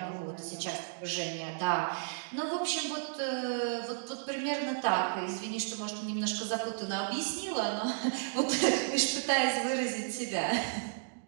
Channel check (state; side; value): silent; left; digital silence